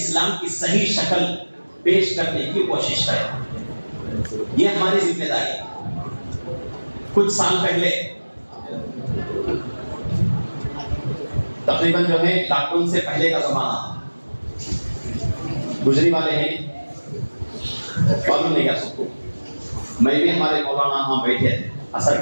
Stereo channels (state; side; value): inverted; both; correlation -1.00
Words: کی صحیح شکل پیش کرنے کی کوشش کریں. یہ ہماری ذمہ داری ہے. کچھ سال پہلے تقریباً جو ہے لاک ڈاؤن سے پہلے کا زمانہ گزری والے ہیں، معلوم نہیں کیا سب کو. میں بھی ہمارے مولانا وہاں بیٹھے تھے عصر